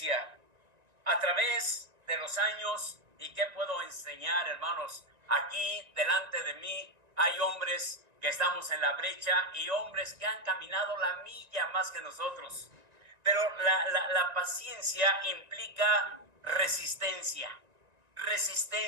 a través de los años. ¿Y qué puedo enseñar, hermanos? Aquí delante de mí hay hombres que estamos en la brecha y hombres que han caminado la milla más que nosotros. Pero la paciencia implica resistencia,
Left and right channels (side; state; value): left; late; 1.9 ms